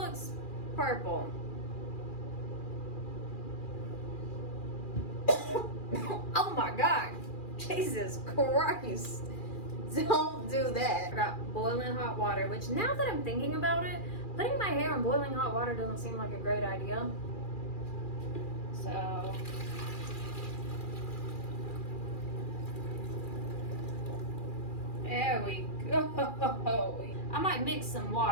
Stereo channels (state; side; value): late; right; 2.4 ms